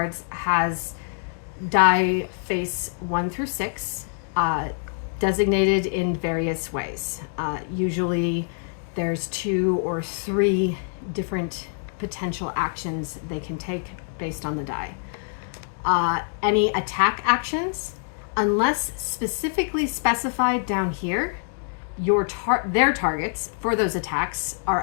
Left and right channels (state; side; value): silent; right; digital silence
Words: has die face 1 through 6, designated in various ways. Usually there's 2 or 3 different potential actions they can take based on the die. Any attack actions, unless specifically specified down here, their targets for those attacks are